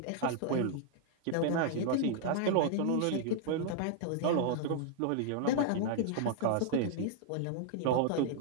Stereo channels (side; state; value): both; different; correlation -0.01